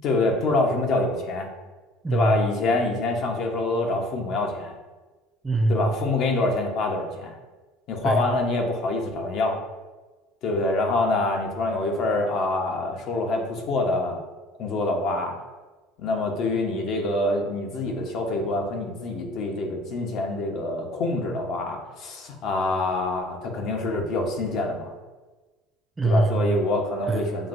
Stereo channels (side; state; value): both; normal; correlation 0.53